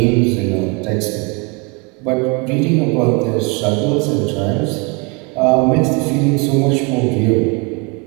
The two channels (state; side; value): quieter; left; 29.8 dB